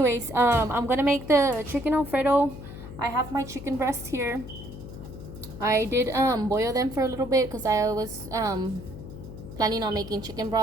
I'm going to make the chicken alfredo. I have my chicken breast here. I did boil them for a little bit because I was planning on making chicken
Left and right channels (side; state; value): left; noise; hum, 12 dB below the sound